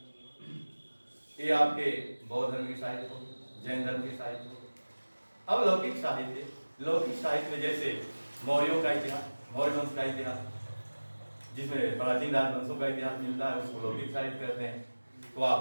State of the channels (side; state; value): both; inverted; correlation -1.00